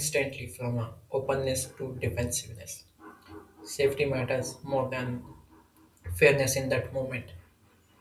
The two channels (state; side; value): identical; both; correlation 1.00